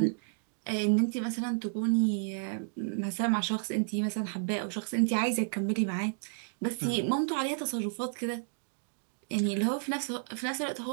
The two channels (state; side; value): silent; left; digital silence